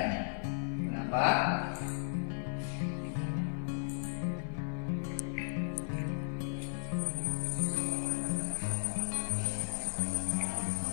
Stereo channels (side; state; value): right; silent; 54 dB below the other